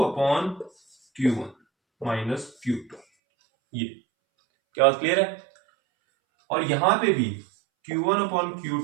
माइनस Q2। ये क्या बात क्लियर है? और यहां पे भी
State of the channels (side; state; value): left; drops out; at 3.0 s